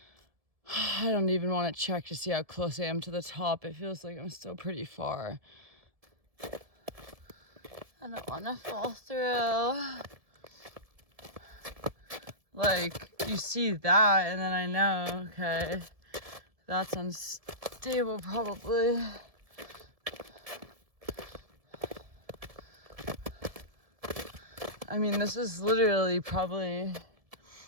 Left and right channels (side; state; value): left; late; 1.7 ms